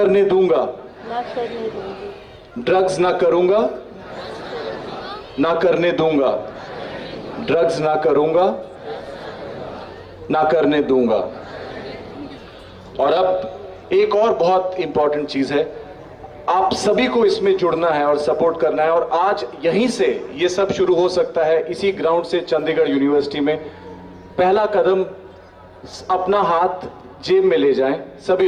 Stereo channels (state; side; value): identical; both; correlation 1.00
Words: दूंगा, ड्रग्स ना करूंगा, ना करने दूंगा, ड्रग्स ना करूंगा, ना करने दूंगा। और अब एक और बहुत इंपॉर्टेंट चीज है, आप सभी को इसमें जुड़ना है और सपोर्ट करना है। और आज यहीं से ये सब शुरू हो सकता है, इसी ग्राउंड से चंडीगढ़ यूनिवर्सिटी में। पहला कदम, अपना हाथ जेब में ले जाएं,